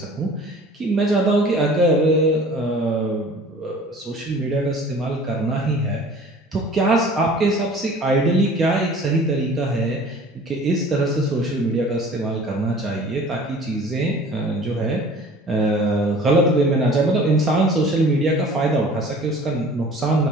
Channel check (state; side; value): normal; both; correlation 0.46